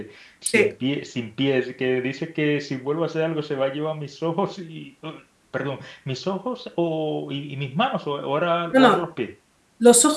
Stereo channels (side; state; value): both; identical; correlation 1.00